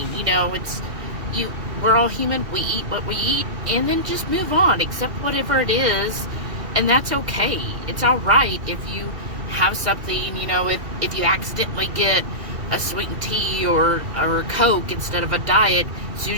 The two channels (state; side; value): late; left; 2.3 ms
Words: You know, we're all human. We eat what we eat, and then just move on, accept whatever it is, and that's okay. It's all right if you have something, you know, if you accidentally get a sweetened tea or a Coke instead of a diet, as soon